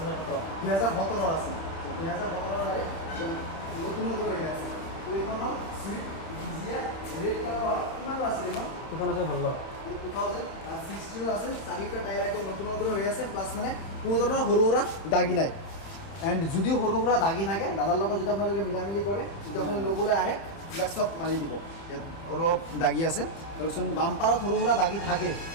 2017 আছিল 2017 গাড়ী নতুন নতুন হৈ আছে তো এইখন হ'ল চুইফ্ট ডিজিয়াৰ ৰেড কালাৰ কিমানৰ আছিল এইখন এখন আছে ভাল 2016 আছে চাৰিটা টায়াৰ একদম নতুন নতুন হৈ আছে প্লাছ মানে কোনো ধৰণৰ সৰু সুৰা দাগি নাই এণ্ড যদিও সৰু সুৰা দাগি থাকে দাদাৰ লগত যদি আপোনালোকে মিলামিলি কৰে যদি আপুনি ল'বলৈ আহে এইবিলাক চব মাৰি দিব ইয়াত অলপ দাগি আছে তাৰপিছত বাম্পাৰত সৰু সুৰা দাগি থাকে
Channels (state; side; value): late; right; 30 ms